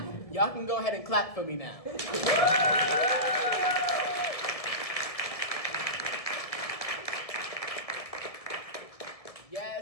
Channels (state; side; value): late; right; 1.7 ms